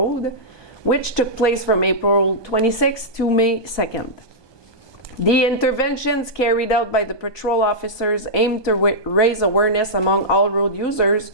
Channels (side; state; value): right; late; 1.2 ms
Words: which took place from April 26th to May 2nd. The interventions carried out by the patrol officers aim to raise awareness among all road users,